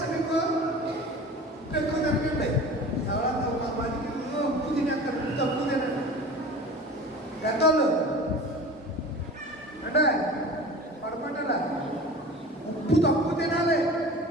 మీకు? ఎక్కువ తినకండి. ఎవరన్నా ఒక మందికి ఉప్పు తినేస్తారు, ఉప్పు తక్కువ తినండి. పెద్దోళ్ళు అంటే పడుకుంటారా? ఉప్పు తక్కువ తినాలి.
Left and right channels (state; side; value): normal; both; correlation 0.38